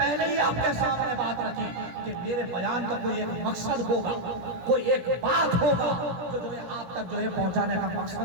ہی آپ کے سامنے بات رکھی کہ میرے بیان کا کوئی ایک مقصد ہوگا، کوئی ایک بات ہوگا جو آپ تک جو ہے پہنچانے کا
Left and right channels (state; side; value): late; left; 17 ms